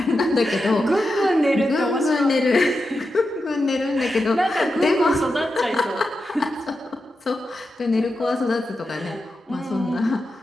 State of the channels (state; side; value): normal; both; correlation 0.89